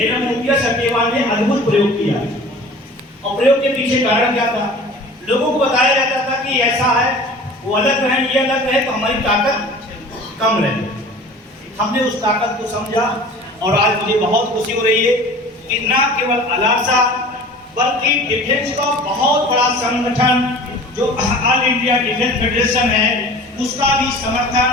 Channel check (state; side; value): normal; both; correlation 0.43